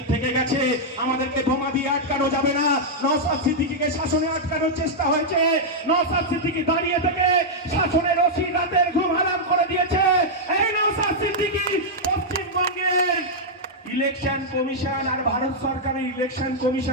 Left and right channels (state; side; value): normal; both; correlation -0.05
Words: থেকে গেছে, আমাদেরকে বোমা দিয়ে আটকানো যাবে না। নওশাদ সিদ্দিকীকে শাসনে আটকানোর চেষ্টা হয়েছে, নওশাদ সিদ্দিকী দাঁড়িয়ে থেকে শাসনের ওসি রাতের ঘুম হারাম করে দিয়েছে। এই নওশাদ সিদ্দিকী পশ্চিমবঙ্গের ইলেকশন কমিশন আর ভারত সরকারের ইলেকশন